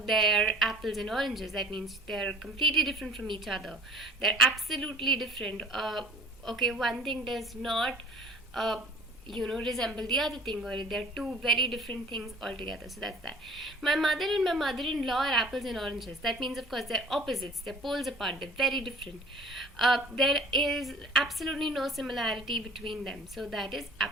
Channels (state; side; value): normal; both; correlation 0.47